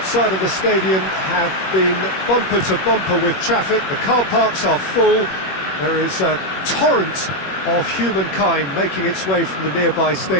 of the stadium have been bumper to bumper with traffic. The car parks are full. There is a torrent of humankind making its way from the nearby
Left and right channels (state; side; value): late; right; 21 ms